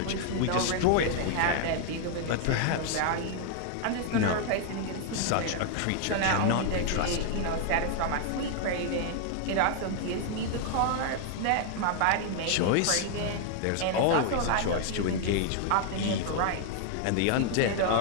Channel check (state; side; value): different; both; correlation 0.00